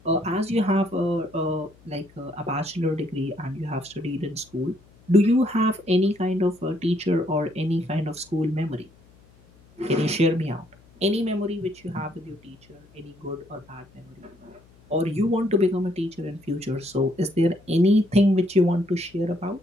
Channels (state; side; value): noise; left; hum, 28 dB below the sound